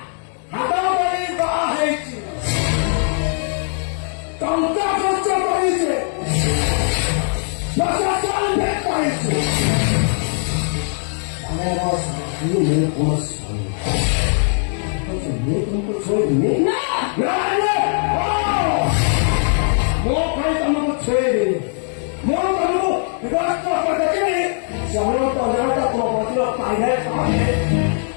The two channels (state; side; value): silent; right; 66 dB below the other